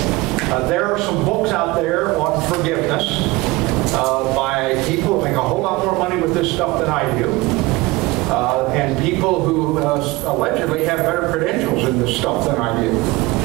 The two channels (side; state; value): left; quieter; 21.7 dB